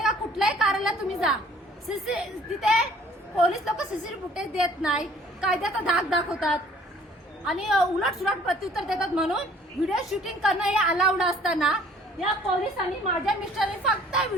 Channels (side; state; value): both; normal; correlation 0.55